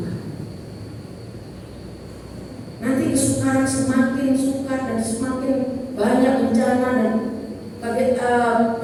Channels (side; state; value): both; identical; correlation 1.00